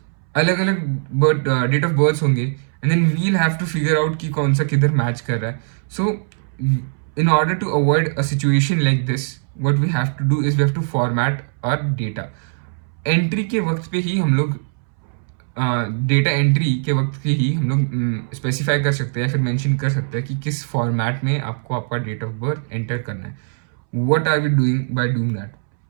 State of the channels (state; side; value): silent; left; 65 dB below the other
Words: अलग अलग डेट ऑफ बर्थ होंगे and then we'll have to figure out कि कौन सा किधर मैच कर रहा है. So in order to avoid a situation like this, what we have to do is we have to format our data. Entry के वक्त पे ही हम लोग डेटा एंट्री के वक्त के ही हम लोग स्पेसिफाई कर सकते हैं या फिर मेंशन कर सकते हैं कि किस फॉर्मेट में आपको आपका डेट ऑफ बर्थ एंटर करना है. What are we doing by doing that?